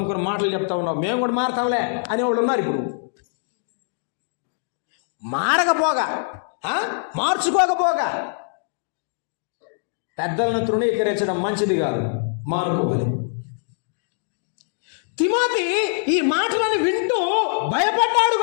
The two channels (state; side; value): silent; right; digital silence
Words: మాటలు చెప్తా ఉన్నావు, మేము కూడా మారతాంలే అనేవాళ్ళు ఉన్నారు. ఇప్పుడు మారకపోగా, మార్చుకోకపోగా పెద్దలను తృణీకరించడం మంచిది కాదు, మారుకోవాలి. తిమోతి ఈ మాటలను వింటూ భయపడ్డాడు